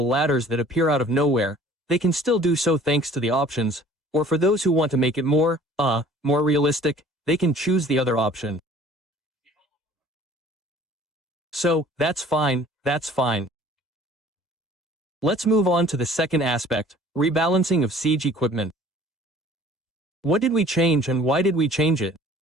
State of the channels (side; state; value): both; normal; correlation 0.51